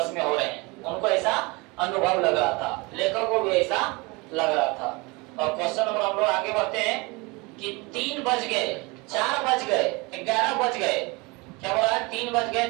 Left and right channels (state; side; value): quieter; left; 26.2 dB